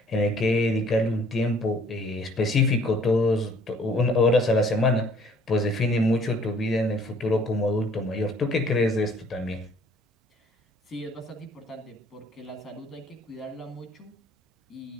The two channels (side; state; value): both; normal; correlation 0.58